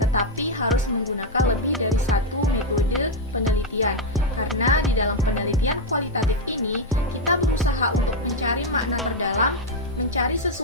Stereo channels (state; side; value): normal; both; correlation 0.02